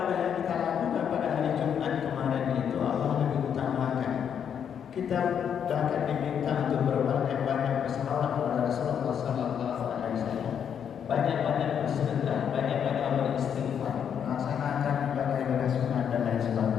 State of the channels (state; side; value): quieter; right; 8.2 dB